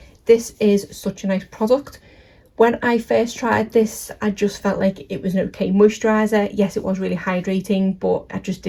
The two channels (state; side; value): identical; both; correlation 1.00